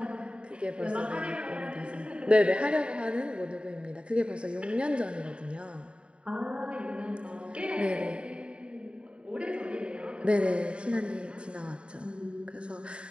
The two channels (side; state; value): left; late; 0.054 ms